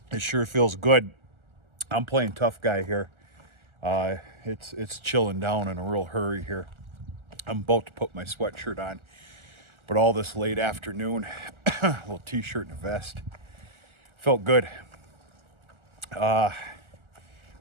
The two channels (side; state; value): left; late; 1.4 ms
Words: It sure feels good. I'm playing tough guy here. It's chilling down in a real hurry here. I'm about to put my sweatshirt on, but all this late afternoon, a little t-shirt and a vest, felt good.